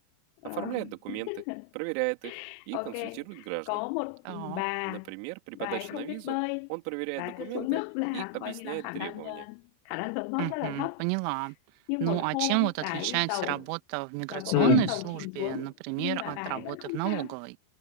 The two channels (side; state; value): both; different; correlation -0.01